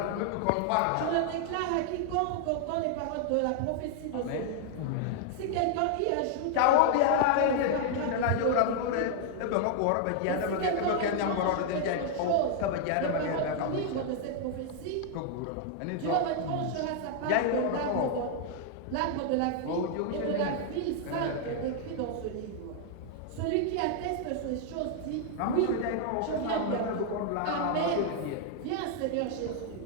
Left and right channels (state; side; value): different; both; correlation 0.00